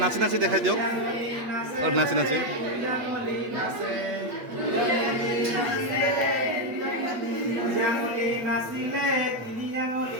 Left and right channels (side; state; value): left; late; 8.3 ms